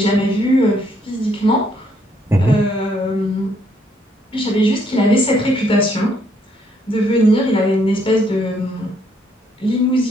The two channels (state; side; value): normal; both; correlation 0.69